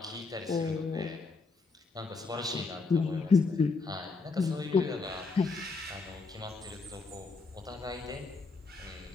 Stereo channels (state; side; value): quieter; right; 4.1 dB